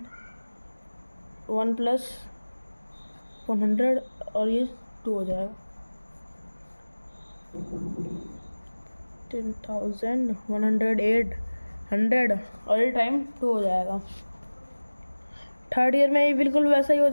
1 प्लस 100 और ये 2 हो जाएगा, 10,000, 108, 100 और ये टाइम 2 हो जाएगा। थर्ड ईयर में ये बिल्कुल वैसा ही हो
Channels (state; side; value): inverted; both; correlation -1.00